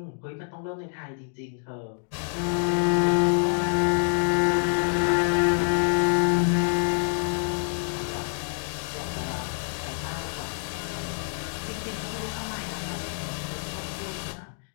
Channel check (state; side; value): silent; right; digital silence